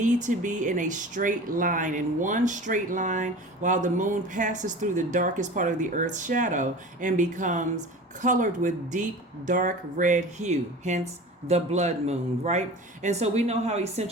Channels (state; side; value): normal; both; correlation 0.37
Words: to be in a straight line, in one straight line, while the moon passes through the darkest part of the earth's shadow and becomes colored with deep, dark red hue, hence the blood moon, right? And so we know how